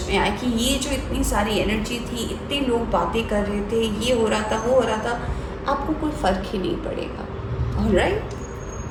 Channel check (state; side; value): identical; both; correlation 1.00